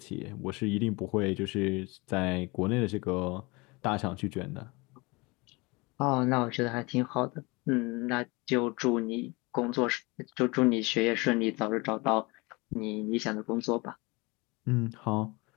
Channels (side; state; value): right; quieter; 25.7 dB